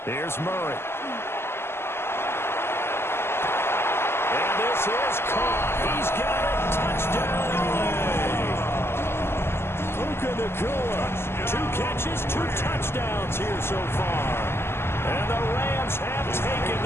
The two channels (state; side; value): late; right; 0.12 ms